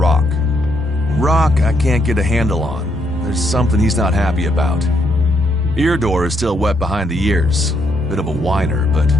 Rock I can't get a handle on. There's something he's not happy about. Irdor is still wet behind the ears. Bit of a whiner, but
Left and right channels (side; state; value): both; normal; correlation 0.75